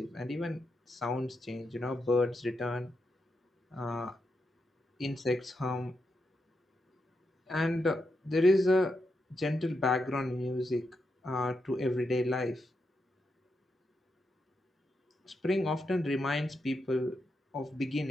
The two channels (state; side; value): normal; both; correlation 0.84